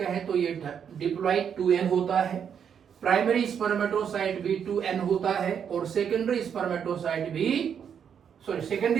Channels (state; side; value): quieter; left; 7.8 dB